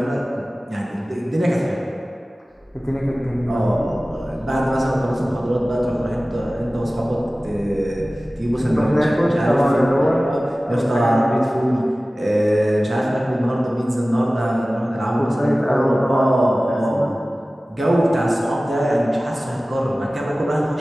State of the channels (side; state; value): both; normal; correlation 0.97